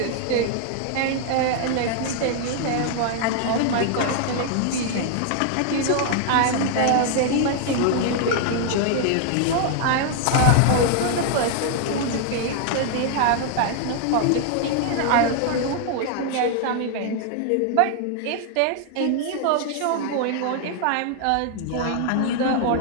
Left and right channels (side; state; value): both; different; correlation 0.00